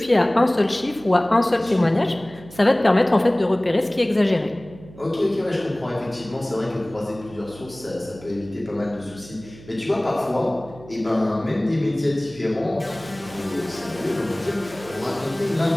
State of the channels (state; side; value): noise; right; hum, 19 dB below the sound